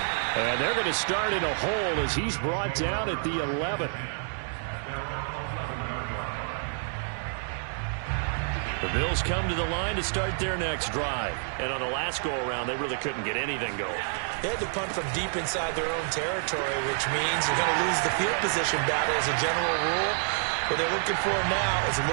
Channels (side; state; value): left; silent; digital silence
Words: And they're going to start in a hole as he's brought down at the 11. The Bills come to the line to start their next drive. And on the last go-around, they really couldn't get anything going. They had to punt from deep inside their own territory, which means you're going to lose the field position battle as a general rule. What they're looking for now is a